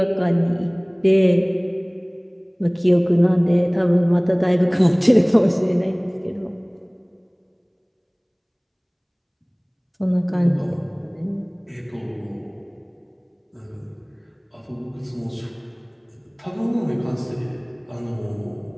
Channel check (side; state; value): both; identical; correlation 1.00